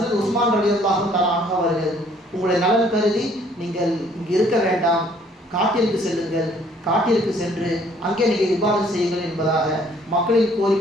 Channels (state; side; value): normal; both; correlation 0.61